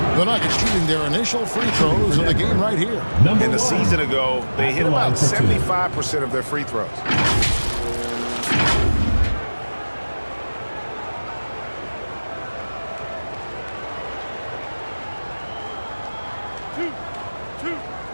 The Nuggets shooting their initial free throws of the game right here. In the season ago, they hit about 75% of their free throws.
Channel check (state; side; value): inverted; both; correlation -1.00